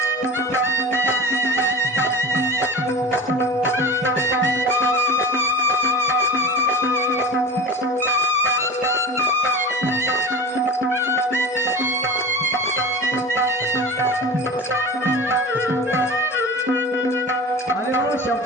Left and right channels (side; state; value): both; normal; correlation 0.33